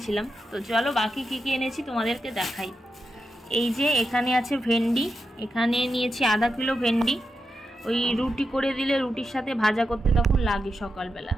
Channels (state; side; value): normal; both; correlation 0.88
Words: তো চলো বাকি কী কী এনেছি তোমাদেরকে দেখাই। এই যে এখানে আছে ভেন্ডি, এখানে নিয়েছি 1/2 কিলো ভেন্ডি। ওই রুটি করে দিলে রুটির সাথে ভাজা করতে তখন লাগে সকালবেলা,